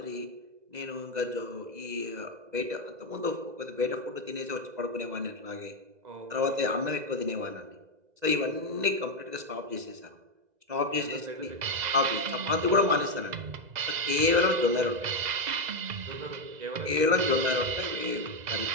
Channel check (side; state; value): left; late; 2.0 ms